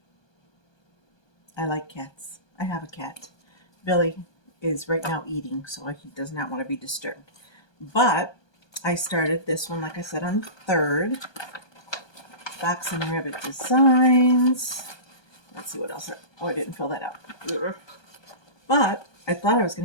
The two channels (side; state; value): right; late; 1.2 ms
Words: I like cats. I have a cat. Billy is right now eating, so he does not want to be disturbed. But I started this one, like I said, on the 3rd. Box and Rabbit Designs. Let's see what else. Oh, I didn't fill that out. But I thought I was